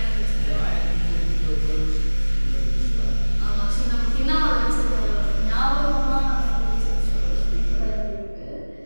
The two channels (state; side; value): inverted; both; correlation -1.00